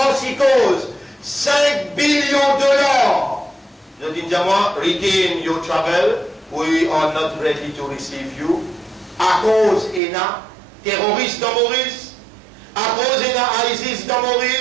5 billions de dollars. Je dis à moi, retain your travel, we are not ready to receive you. À cause il y a terroristes dans Maurice, à cause il y a ISIS dans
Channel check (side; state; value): left; drops out; at 10.0 s